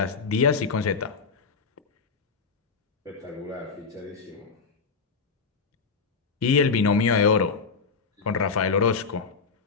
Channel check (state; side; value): quieter; right; 5.1 dB